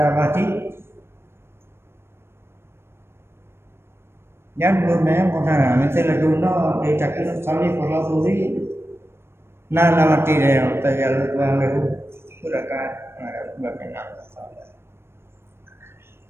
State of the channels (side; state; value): left; late; 0.12 ms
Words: Yang belum pernah misalnya guna dia cakap salih kalau turi nama tidak tajal tuang lehu gerakan berkenal.